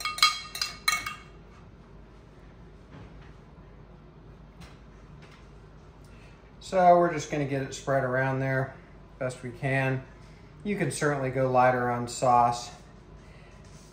So we're just gonna get it spread around there best we can. You can certainly go lighter on sauce.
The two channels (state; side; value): identical; both; correlation 1.00